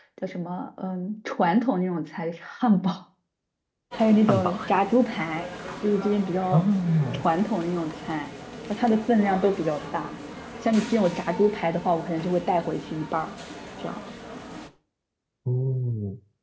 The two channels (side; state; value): both; identical; correlation 1.00